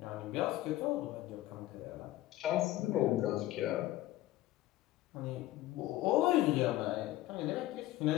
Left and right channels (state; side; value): quieter; right; 15.9 dB